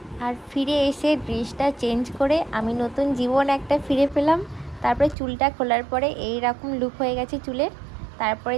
আর ফিরে এসে ড্রেসটা চেঞ্জ করে আমি নতুন জীবন একটা ফিরে পেলাম। তারপরে চুলটা খোলার পরে এই রকম লুক হয়ে গেছে চুলের। তারপরে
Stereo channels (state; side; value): drops out; left; at 5.2 s